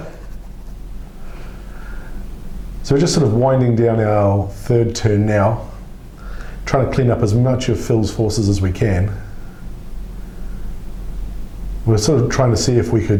So we're just sort of winding down our third turn now, trying to clean up as much of Phil's forces as we can. We're sort of trying to see if we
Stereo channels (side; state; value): both; identical; correlation 1.00